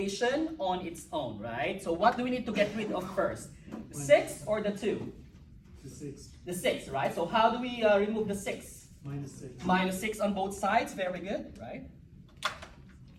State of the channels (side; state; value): both; identical; correlation 1.00